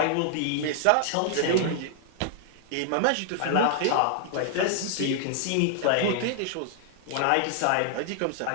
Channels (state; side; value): different; both; correlation -0.01